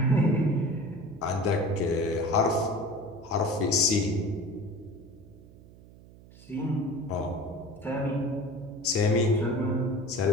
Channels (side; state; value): right; noise; hum, 21 dB below the sound